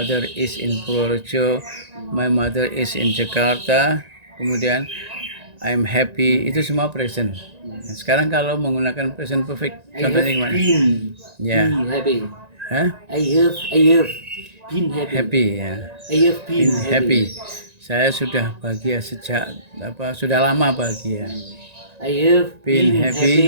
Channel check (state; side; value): late; left; 1.9 ms